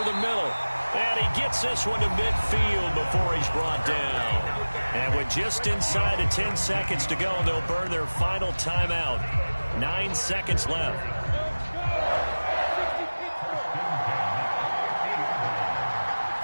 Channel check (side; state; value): both; inverted; correlation -1.00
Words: the middle. And he gets this one to midfield before he's brought down. And with just inside of 10 seconds to go, they'll burn their final timeout. 9 seconds left.